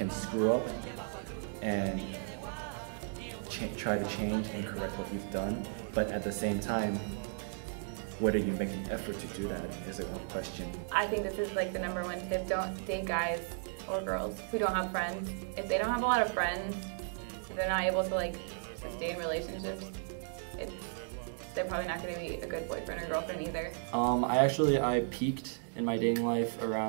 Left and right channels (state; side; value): silent; left; digital silence